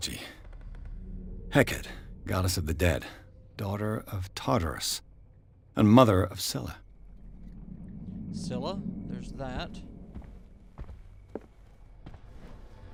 Hecate, goddess of the dead, daughter of Tartarus, and mother of Scylla. Scylla, there's that.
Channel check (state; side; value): identical; both; correlation 1.00